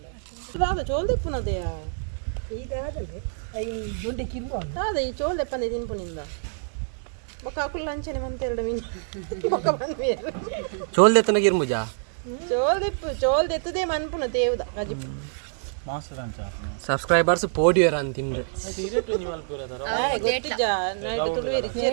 ಚೋಲ್ದೆಪ್ಪುನದೆಯ ಇದಾಗಲೇ ದೊಡ್ಡ ಕಿರ್ಬ ಅದೇ ಈ ಚೋಲ್ದೆಪ್ಪನೆ ತಿನ್ಪುನಿಂದ ಬೊಕ್ಕ ಅಕುಲ್ ಅಂಚನೆ ಮಂತೆರಡು ಮೀನು ಬೊಕ್ಕ ಬಂದ್ಮೇಲೆ ಚೋಲ್ದೆತ್ತನ ಗಿರ್ಮುಜಾ ಚೋಲ್ದೆತ್ತದೇ ಮನ್ಪುನ ತೇವ್ದ ಗಜಿಪು ಸಬ್ಸ್ಕ್ರೈಬರ್ಸ್ ಪೋಡಿಯರ್ ಅಂತಿಂದ್ರೆ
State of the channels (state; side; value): silent; left; digital silence